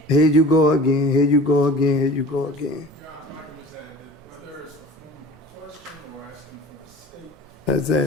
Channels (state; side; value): normal; both; correlation 0.41